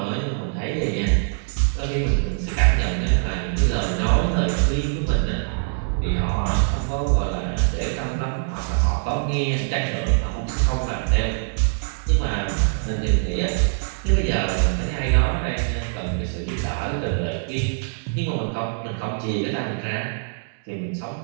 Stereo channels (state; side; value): silent; left; digital silence